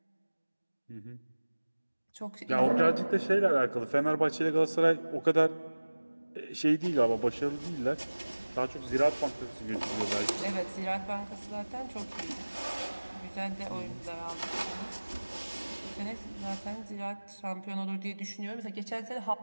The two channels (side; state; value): both; inverted; correlation -1.00